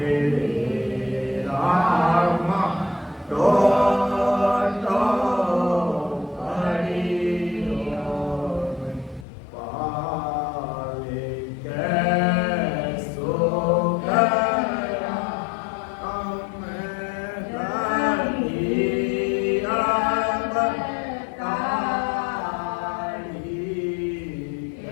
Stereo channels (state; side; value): drops out; right; at 9.2 s